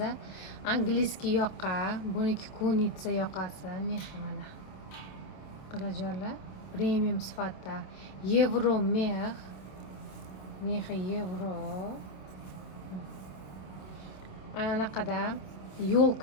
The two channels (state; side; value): late; right; 27 ms